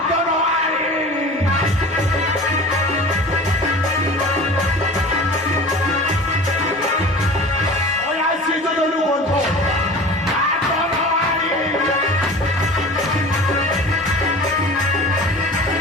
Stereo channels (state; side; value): normal; both; correlation 0.38